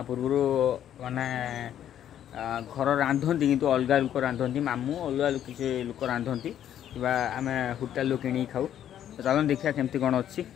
पूर्व माने घर रांधती किंतु अलग लोक रांधती मामू अलग किसी लोक रांधती कि आम होटेल किणी खाऊ। तो चलो देखिए केमती कौन अच्छी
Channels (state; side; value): quieter; right; 10.6 dB